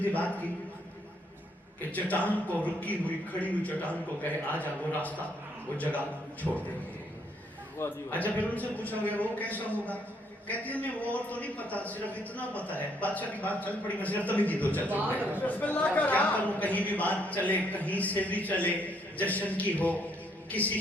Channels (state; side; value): normal; both; correlation 0.70